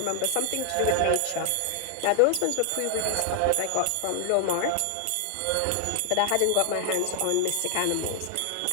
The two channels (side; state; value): both; different; correlation 0.00